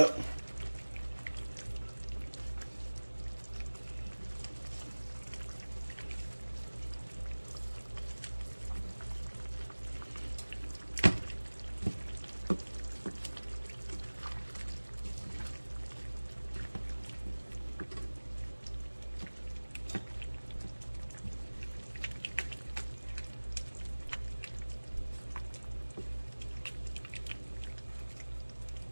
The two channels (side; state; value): both; inverted; correlation -1.00